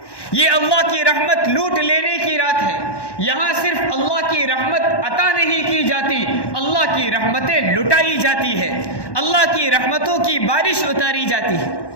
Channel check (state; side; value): late; right; 1.1 ms